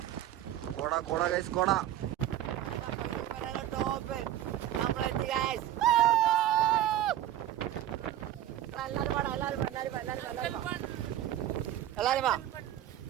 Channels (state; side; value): quieter; left; 12.2 dB